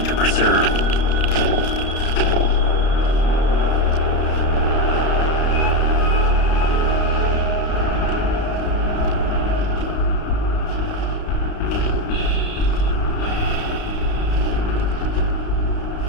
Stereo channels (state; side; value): late; right; 32 ms